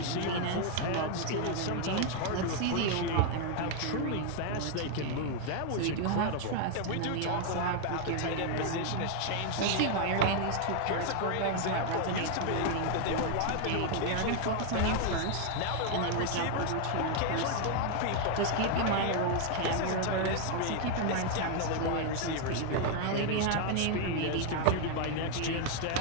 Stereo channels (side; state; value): both; different; correlation 0.00